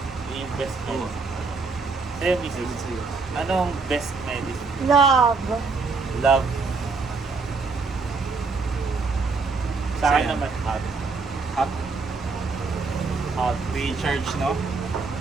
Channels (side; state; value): left; quieter; 4.3 dB